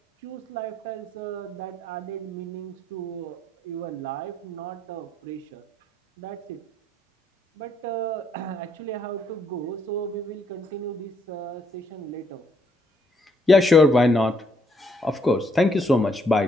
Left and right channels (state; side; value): normal; both; correlation 0.71